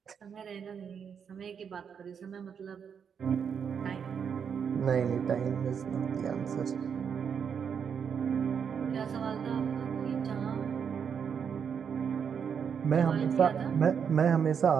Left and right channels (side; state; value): left; quieter; 7.1 dB